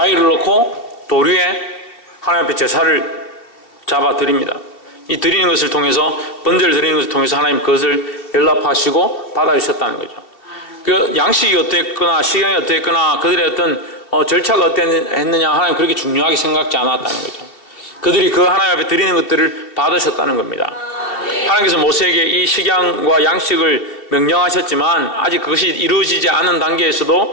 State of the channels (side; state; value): right; late; 2.7 ms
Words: 놓고 돌 위에 하나님 앞에 제사를 잡아 드립니다. 이 드리는 것을 통해서, 번제를 드리는 것을 통해서 하나님 그것을 연락하시고 받아주셨다는 거죠. 그 양식이 어땠거나 식양이 어땠거나 그들의 어떤 절차가 어땠느냐 하나님 그렇게 중요하게 생각지 않았다는 거죠. 그들이 그 하나님 앞에 드리는 것들을 받으셨다는 겁니다. 하나님께서 모세에게 이 식양과 양식을 명령하셨지만 아직 그것이 이루어지지 않은